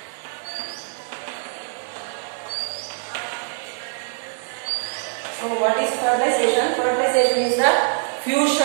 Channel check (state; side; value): silent; left; digital silence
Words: So what is fertilization? Fertilization is the